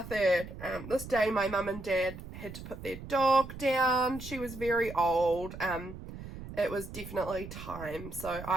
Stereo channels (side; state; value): right; noise; rumble, 12 dB below the sound